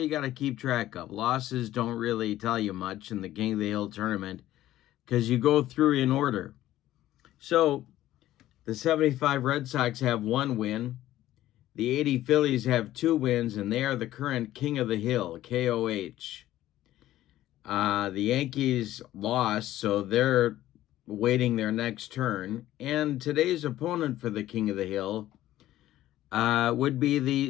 got to keep track of. Losses don't really tell you much in the King of the Hill tournament because you go through in order. So, the 75 Red Sox have 1 win. The 80 Phillies have 2 wins, and they are the current King of the Hill, KOH. The Yankees lost, so they're waiting their next turn. And today's opponent for the King of the Hill would be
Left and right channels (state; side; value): quieter; right; 14.2 dB